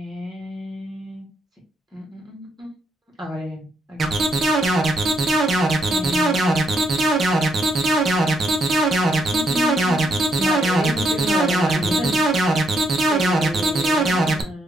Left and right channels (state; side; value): normal; both; correlation 0.76